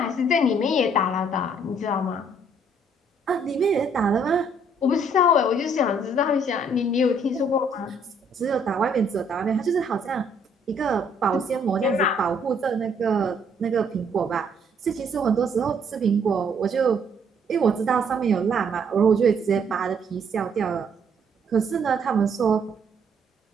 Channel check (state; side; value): normal; both; correlation 0.66